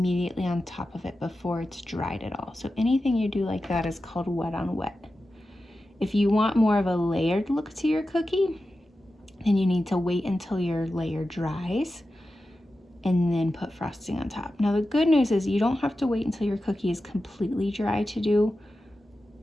on top of it before it's dried at all. So anything you do like that is called wet on wet. If you want more of a layered look to your cookie, then you need to wait until your layer dries and then put frosting on top. Now the good news is you don't have to wait until your cookie is completely dry to do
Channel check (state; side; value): normal; both; correlation 0.92